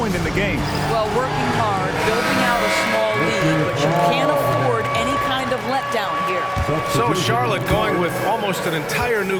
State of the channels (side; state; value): both; identical; correlation 1.00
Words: in the game. Well, working hard, building out a small lead, but you can't afford any kind of letdown here. So Charlotte going with almost an entire